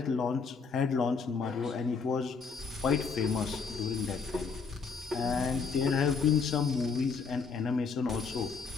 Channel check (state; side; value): quieter; right; 5.2 dB